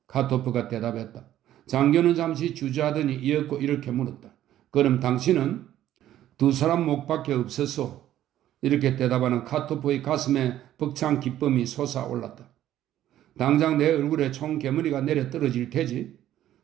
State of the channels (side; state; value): left; quieter; 12.5 dB